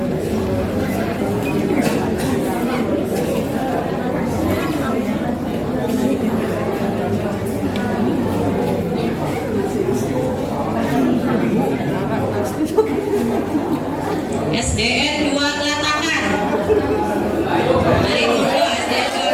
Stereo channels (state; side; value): identical; both; correlation 1.00